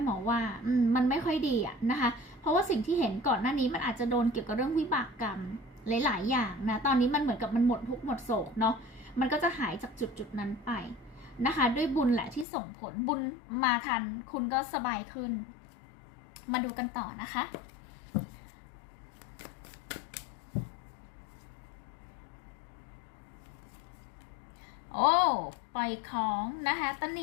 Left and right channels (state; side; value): drops out; right; at 12.5 s